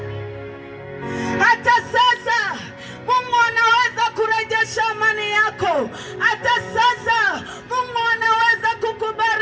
Hata sasa Mungu anaweza kurejesha amani yako. Hata sasa Mungu anaweza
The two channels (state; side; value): identical; both; correlation 1.00